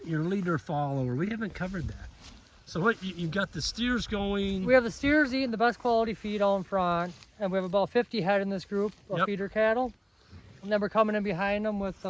leader follower. We haven't covered that. So what you've got the steers going. We have the steers eating the best quality feed out in front, and we have about 50 head in this group of Yep. feeder cattle. And then we're coming in behind them with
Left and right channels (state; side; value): identical; both; correlation 1.00